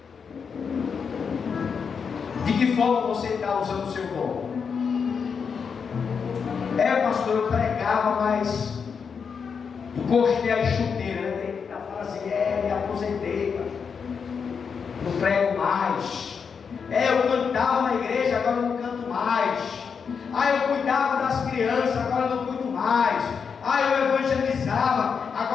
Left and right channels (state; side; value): quieter; right; 6.2 dB